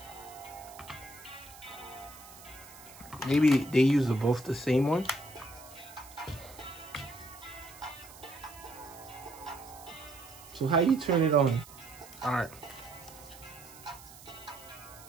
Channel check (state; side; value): noise; right; hiss, 18 dB below the sound